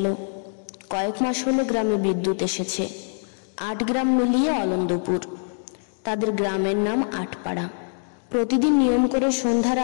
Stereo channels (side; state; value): right; silent; digital silence